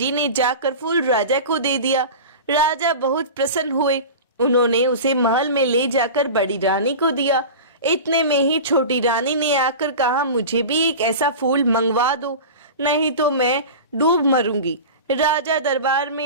ने जाकर फूल राजा को दे दिया। राजा बहुत प्रसन्न हुए। उन्होंने उसे महल में ले जाकर बड़ी रानी को दिया। इतने में ही छोटी रानी ने आकर कहा, मुझे भी एक ऐसा फूल मंगवा दो, नहीं तो मैं डूब मरूंगी। राजा दरबार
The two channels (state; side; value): inverted; both; correlation -0.31